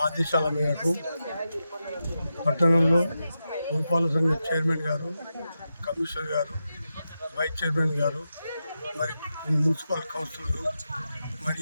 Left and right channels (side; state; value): both; inverted; correlation -0.89